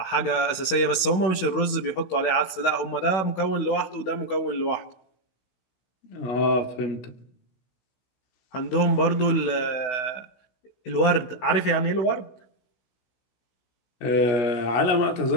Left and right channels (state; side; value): late; right; 16 ms